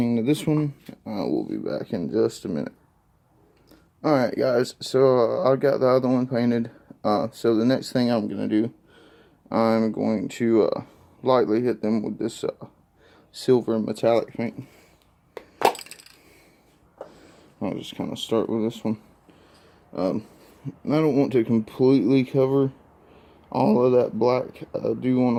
to this one. We'll be back in just a minute. Alright guys, so I got the other one painted. So the next thing I'm going to do, I'm going to lightly hit them with this silver metallic paint. I'll just kind of start with this one. I don't want to completely cover all of that black. I do want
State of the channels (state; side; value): identical; both; correlation 1.00